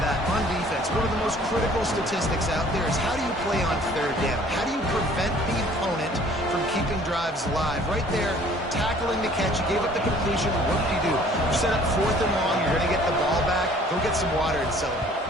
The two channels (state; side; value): normal; both; correlation 0.54